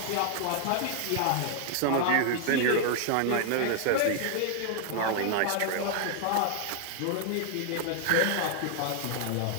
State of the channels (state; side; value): different; both; correlation 0.00